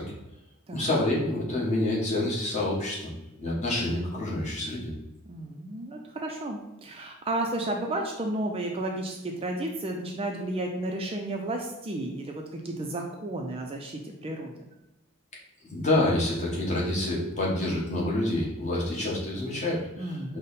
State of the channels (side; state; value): both; normal; correlation 0.44